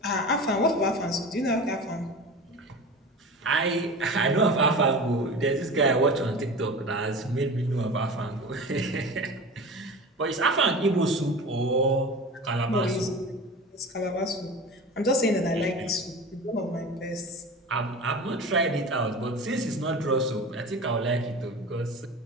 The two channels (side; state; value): both; normal; correlation 0.33